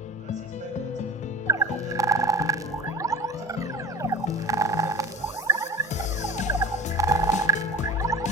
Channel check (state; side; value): normal; both; correlation 0.36